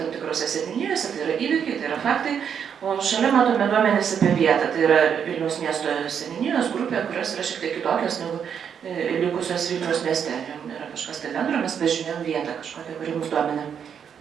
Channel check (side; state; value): left; quieter; 7.7 dB